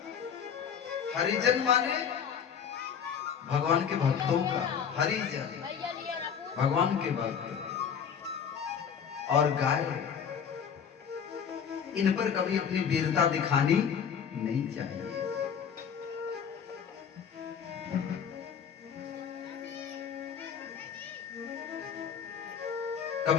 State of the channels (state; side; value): quieter; right; 7.5 dB